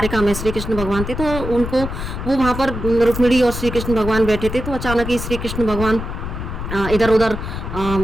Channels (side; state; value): left; noise; rumble, 6 dB below the sound